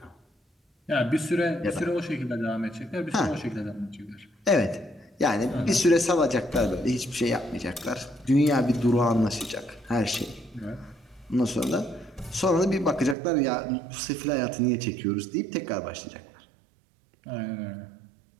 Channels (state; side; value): drops out; left; at 13.2 s